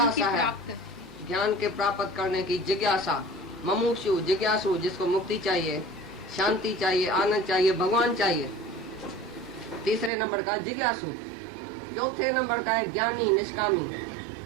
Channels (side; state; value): left; drops out; at 10.1 s